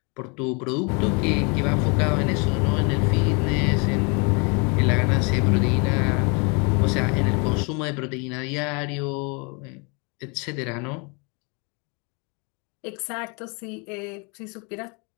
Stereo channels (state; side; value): quieter; right; 32.8 dB